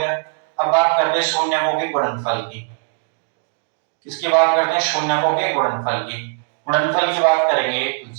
अब बात करते हैं शून्यकों के गुणनफल की, किसकी बात करते हैं शून्यकों के गुणनफल की, गुणनफल की बात करेंगे तो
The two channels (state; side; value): silent; left; digital silence